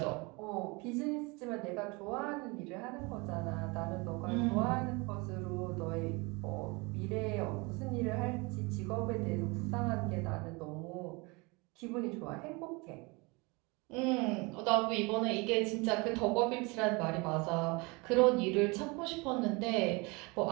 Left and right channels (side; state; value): left; quieter; 27.0 dB